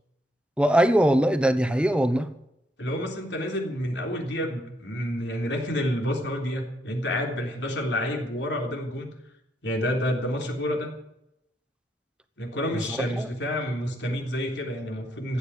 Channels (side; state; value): both; normal; correlation 0.75